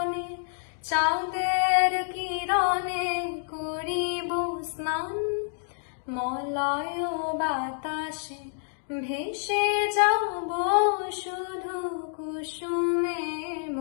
চাঁদের কিরণে করিব স্নান। মলয় বাতাসে ভেসে যাব শুধু কুসুমে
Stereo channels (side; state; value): right; silent; digital silence